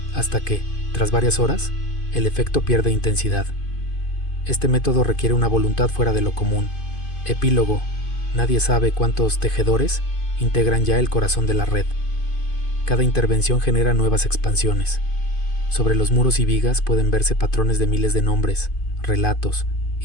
hasta que, tras varias horas, el efecto pierde intensidad. Este método requiere una voluntad fuera de lo común. Epílogo: nadie sabe cuántos tejedores integran ya el corazón de la red. Cada intervención genera nuevas expansiones. Sobre los muros y vigas pueden verse patrones de miles de nombres, relatos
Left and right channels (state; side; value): late; right; 2.5 ms